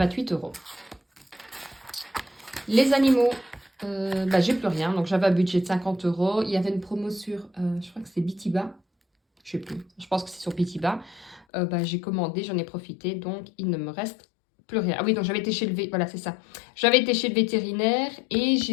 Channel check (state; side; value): drops out; right; at 11.5 s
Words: euros. Les animaux, j'ai plus rien. Donc j'avais un budget de 50 euros. Il y avait une promo sur, je crois que c'est Bitiba. Je sais plus. Je pense que c'est sur Bitiba. J'ai commandé, j'en ai profité. Donc il ne me reste plus rien. Ah oui, donc j'avais été chez le voilà, c'est ça. J'avais été chez le vétérinaire et